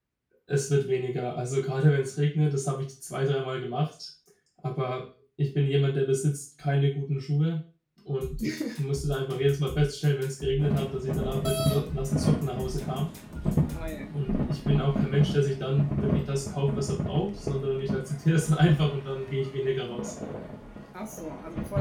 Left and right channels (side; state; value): both; identical; correlation 1.00